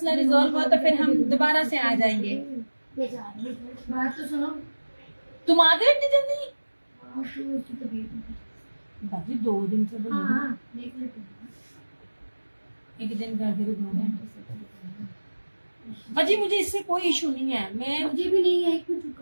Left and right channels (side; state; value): both; inverted; correlation -1.00